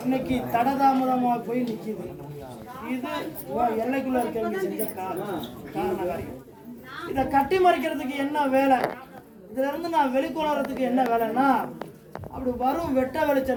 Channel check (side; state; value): both; identical; correlation 1.00